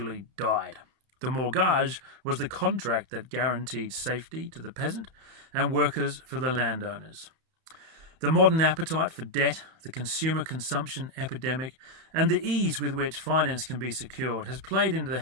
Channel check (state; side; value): late; left; 31 ms